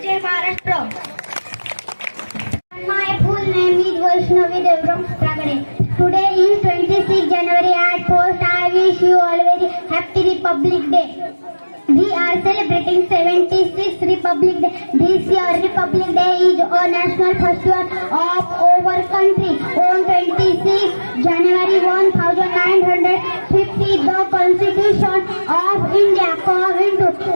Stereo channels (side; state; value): both; inverted; correlation -1.00